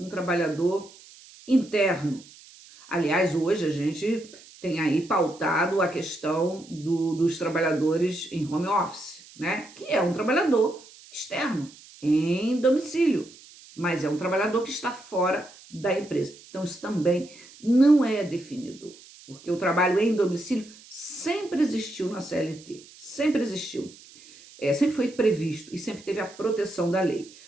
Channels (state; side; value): noise; right; hiss, 22 dB below the sound